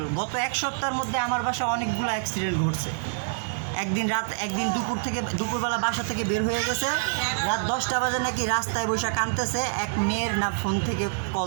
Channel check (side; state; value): left; silent; 61 dB below the other